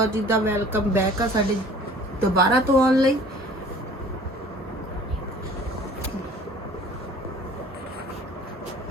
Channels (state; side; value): normal; both; correlation 0.49